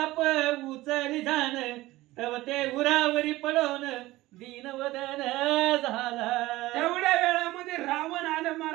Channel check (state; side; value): quieter; left; 18.1 dB